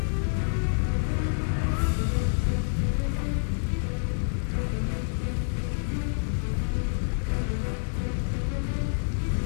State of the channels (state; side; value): silent; right; 60 dB below the other